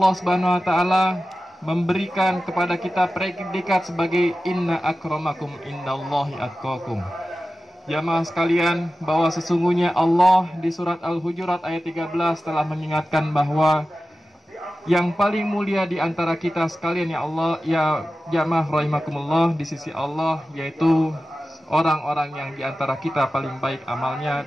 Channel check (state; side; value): normal; both; correlation 0.94